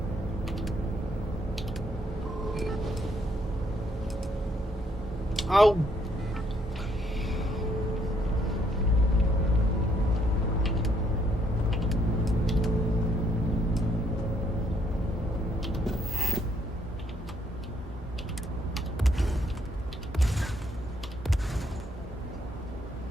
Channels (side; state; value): both; normal; correlation 0.70